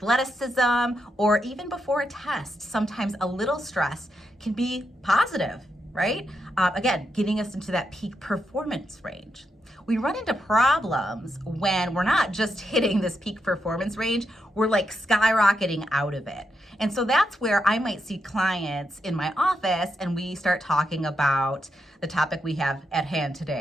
or even before a test, sometimes a little stress can be positive, right? Again, getting us into that peak performance range. We run into problems when we're not just hitting this peak performance range, we're like skyrocketing out of it. And so that's where I might see clients in my office and we start talking about the topic we have at hand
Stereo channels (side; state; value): both; normal; correlation 0.83